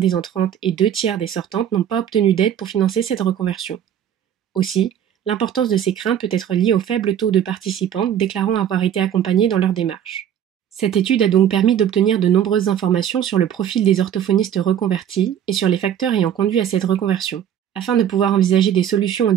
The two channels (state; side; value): quieter; left; 9.7 dB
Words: entrantes et 2 tiers des sortantes n'ont pas obtenu d'aide pour financer cette reconversion. Aussi, l'importance de ces craintes peut être liée au faible taux de participantes déclarant avoir été accompagnées dans leur démarche. Cette étude a donc permis d'obtenir de nombreuses informations sur le profil des orthophonistes reconvertis et sur les facteurs ayant conduit à cette reconversion, afin de pouvoir envisager des solutions aux